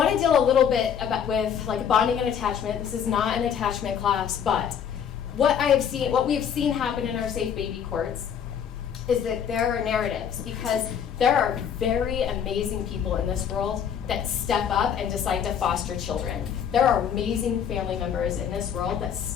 to deal a little bit with like bonding and attachment. This is not an attachment class, but what we have seen happen in our safe baby courts is that there are narratives, because there are very amazing people in this world that step up and decide to foster children. There are amazing family members in this world that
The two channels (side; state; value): right; quieter; 8.2 dB